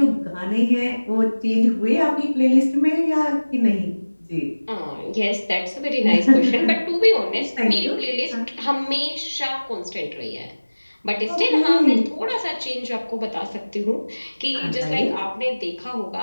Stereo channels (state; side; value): inverted; both; correlation -1.00